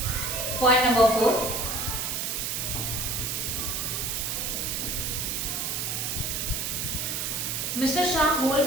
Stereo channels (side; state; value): right; noise; hiss, 1 dB below the sound